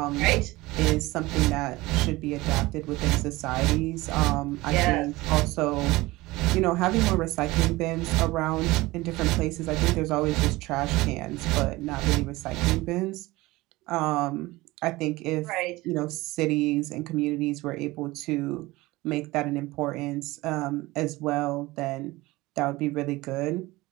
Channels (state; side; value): quieter; left; 20.1 dB